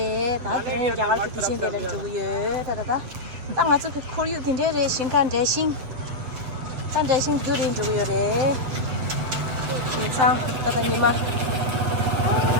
다들은 야가르게 디친데를 주고요. 다다다. 땅 아주 그 코리우 딘데레 신간 대신. 단 대신 두린 주고요래. 신상 다다 니마.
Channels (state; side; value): late; left; 7.5 ms